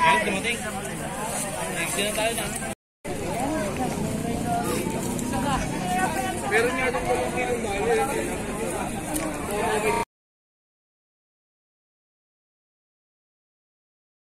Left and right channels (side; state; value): both; identical; correlation 1.00